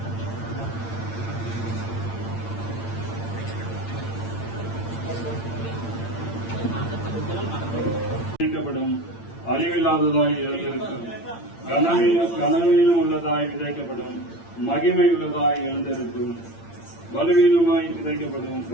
விதைக்கப்படும், அழிவில்லாததாய் எழுந்திருக்கும், கனவீனம் உள்ளதாய் விதைக்கப்படும், மகிமை உள்ளதாய் எழுந்திருக்கும், பலவீனமாய் விதைக்கப்படும்,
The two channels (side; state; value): right; late; 8.8 ms